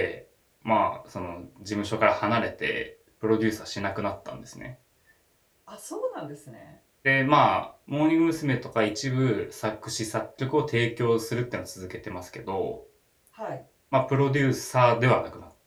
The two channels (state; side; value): identical; both; correlation 1.00